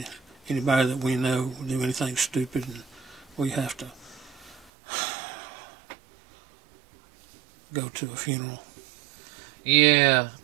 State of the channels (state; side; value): drops out; left; at 4.7 s